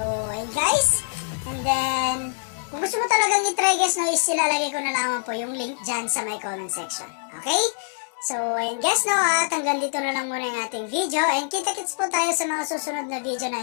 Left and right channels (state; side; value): silent; right; digital silence